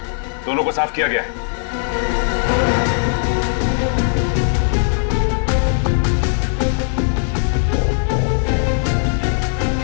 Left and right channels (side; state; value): right; silent; digital silence